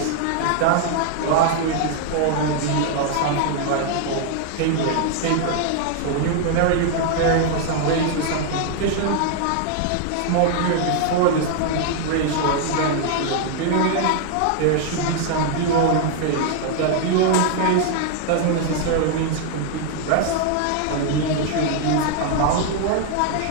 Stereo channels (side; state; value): both; different; correlation 0.00